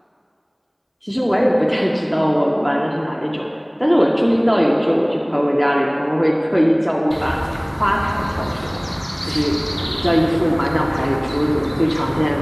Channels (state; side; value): identical; both; correlation 1.00